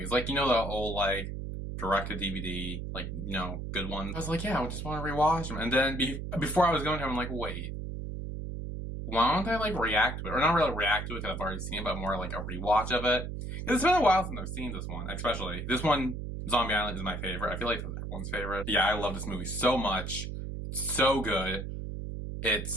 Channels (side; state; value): right; noise; hum, 6 dB below the sound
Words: Like, the old like direct-to-DVD, like, good ones. I was like, yeah, I just want to rewatch them. And then before I was going to, I'm like, wait, why don't I like react to it? Or not really react to it because I've already seen it, but more like a rewatch of it. It's been a while since I've seen this one, especially. This one, Zombie Island, is my favorite. I feel like it's everyone's favorite. Yeah, I love this movie so much. It's so good.